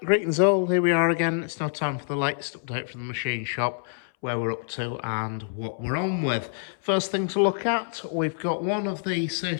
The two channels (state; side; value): silent; right; 61 dB below the other